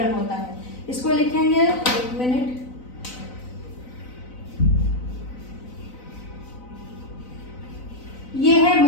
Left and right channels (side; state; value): right; late; 4.0 ms